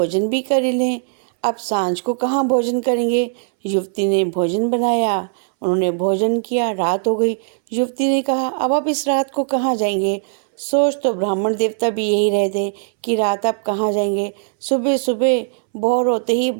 भी कर ही लें, अब सांझ को कहाँ भोजन करेंगे? युवती ने भोजन बनाया, उन्होंने भोजन किया, रात हो गई। युवती ने कहा, अब आप इस रात को कहाँ जाएंगे? सोच तो ब्राह्मण देवता भी यही रहे थे कि रात आप कहाँ जाएंगे, सुबह सुबह भोर होते ही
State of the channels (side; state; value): left; silent; 65 dB below the other